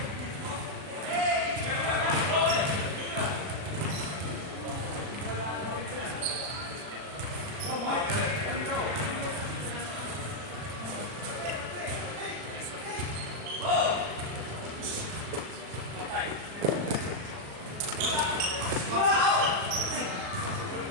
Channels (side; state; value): left; late; 39 ms